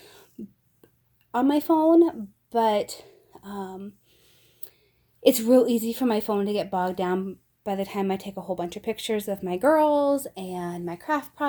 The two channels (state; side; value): identical; both; correlation 1.00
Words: on my phone, but it's real easy for my phone to get bogged down by the time I take a whole bunch of pictures of my girls and my craft